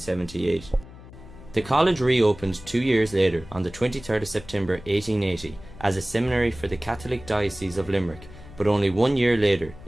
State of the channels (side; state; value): left; noise; hum, 18 dB below the sound